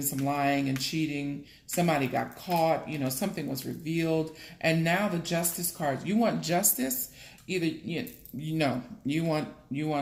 some lying and cheating. Somebody got caught, something was revealed. And now the Justice card. You want justice? Either, you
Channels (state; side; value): identical; both; correlation 1.00